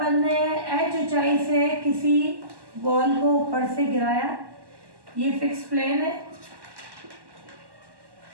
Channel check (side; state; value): left; late; 1.1 ms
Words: ने h ऊंचाई से किसी बॉल को ऊपर से गिराया, ये फिक्स प्लेन है